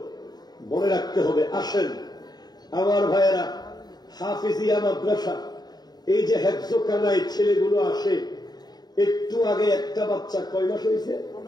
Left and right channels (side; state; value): right; late; 0.20 ms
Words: মনে রাখতে হবে। আসেন আমার ভাইয়েরা, হাফিজিয়া মাদ্রাসা, এই যে হেফজখানায় ছেলেগুলো আসে, একটু আগে একটা বাচ্চা কয় মাস হয়েছে?